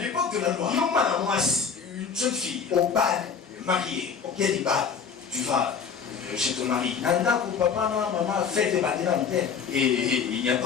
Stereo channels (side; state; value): right; quieter; 6.2 dB